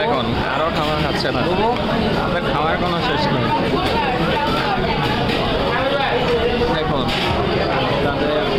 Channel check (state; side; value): identical; both; correlation 1.00